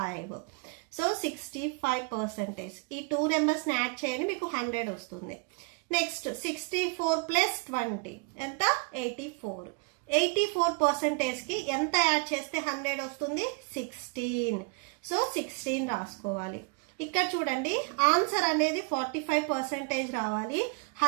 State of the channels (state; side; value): quieter; left; 30.1 dB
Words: సో 65%. ఈ 2 నెంబర్స్ ని యాడ్ చేయండి, మీకు 100 వస్తుంది. నెక్స్ట్ 64 ప్లస్ 20 ఎంత? 84. 84% కి ఎంత యాడ్ చేస్తే 100 వస్తుంది? 16. సో 16 రాసుకోవాలి. ఇక్కడ చూడండి, ఆన్సర్ అనేది 45% రావాలి.